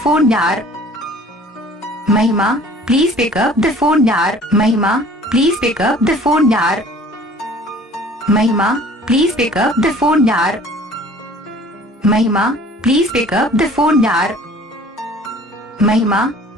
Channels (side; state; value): both; normal; correlation 0.50